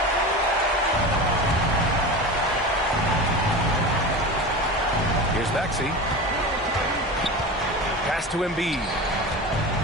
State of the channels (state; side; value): normal; both; correlation 0.29